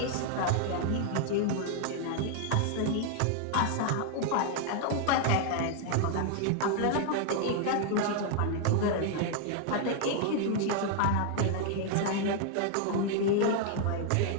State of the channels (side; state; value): both; different; correlation 0.00